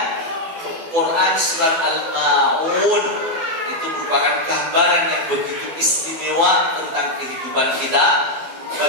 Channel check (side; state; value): left; late; 12 ms